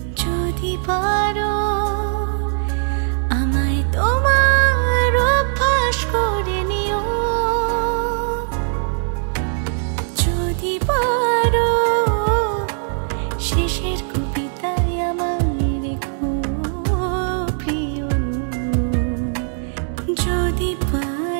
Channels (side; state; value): left; silent; digital silence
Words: যদি পারো আমায় তোমার অভ্যাস করে নিও, যদি পারো শেষের কবিতায় আমায় রেখো প্রিয়, যদি